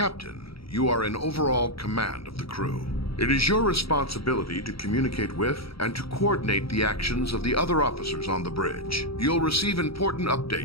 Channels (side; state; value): right; late; 0.76 ms